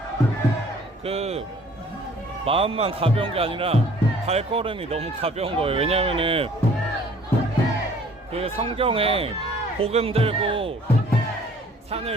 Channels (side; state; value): both; normal; correlation 0.54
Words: 그 마음만 가벼운 게 아니라 발걸음이 너무 가벼운 거예요. 왜냐면은 그 성경에 복음 들고